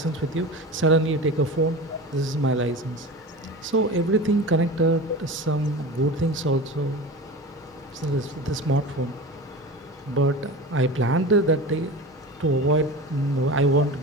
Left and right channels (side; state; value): both; normal; correlation 0.31